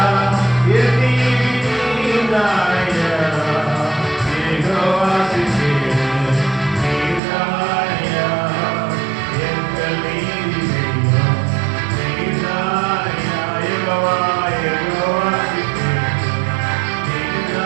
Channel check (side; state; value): left; drops out; at 7.2 s